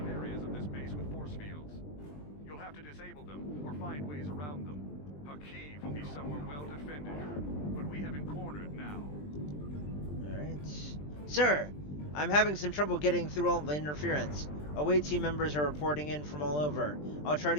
areas of this base with force fields. You'll have to disable them, or find ways around them. Hakiv will be somewhere well defended, but we have him cornered now. Alright. Sir, I'm having some trouble getting through all the interference. Away team members are reporting in from all over. I'll try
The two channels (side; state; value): right; late; 20 ms